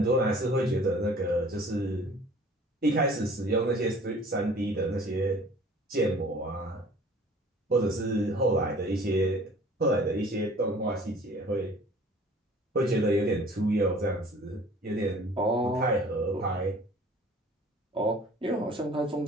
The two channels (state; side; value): normal; both; correlation 0.50